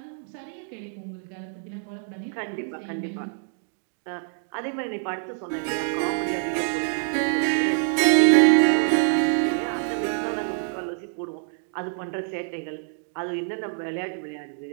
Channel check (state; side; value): silent; left; 61 dB below the other